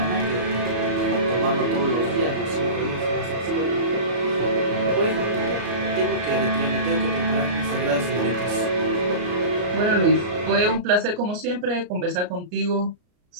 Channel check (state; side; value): late; left; 34 ms